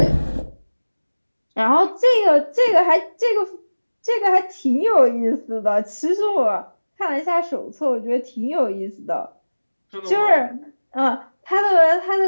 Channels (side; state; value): both; inverted; correlation -1.00